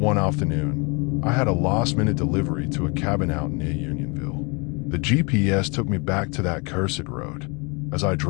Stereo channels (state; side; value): quieter; right; 30.5 dB